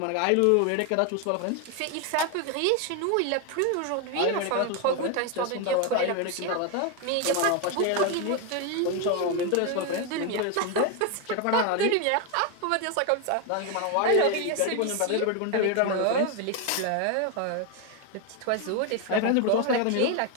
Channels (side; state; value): both; different; correlation 0.01